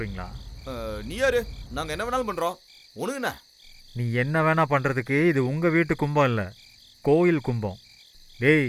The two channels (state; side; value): identical; both; correlation 1.00